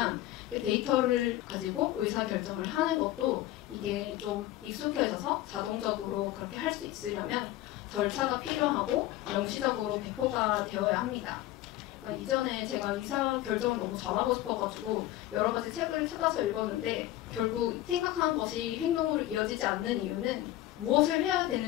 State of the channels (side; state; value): right; quieter; 15.1 dB